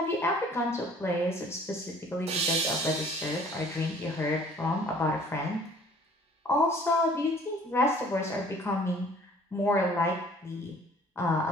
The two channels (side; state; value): both; normal; correlation 0.53